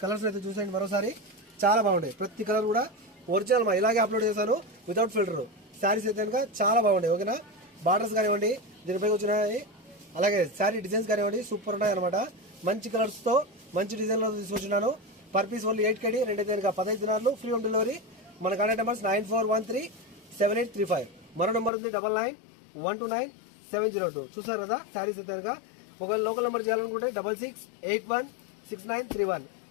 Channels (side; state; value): right; drops out; at 21.7 s